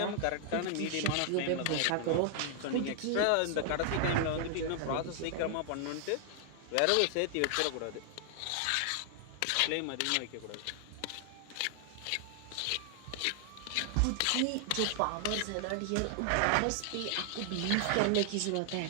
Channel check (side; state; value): both; different; correlation 0.00